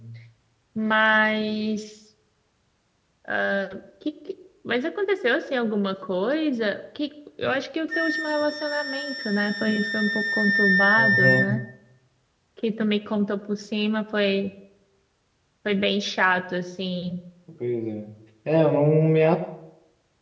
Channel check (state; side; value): identical; both; correlation 1.00